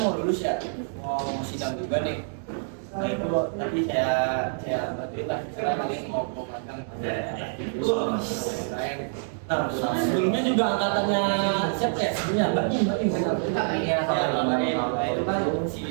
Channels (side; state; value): left; silent; digital silence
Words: mau lulus ya, mau sidang juga nih. Nah itu tadi saya bantuin lah, saya lagi mau magang. Nah sebelumnya juga angkatannya siapa ya? Sebelumnya Mbak Im Iya, Nah itu kan